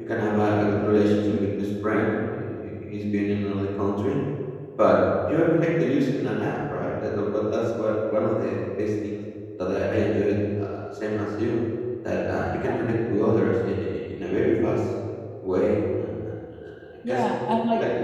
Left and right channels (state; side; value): identical; both; correlation 1.00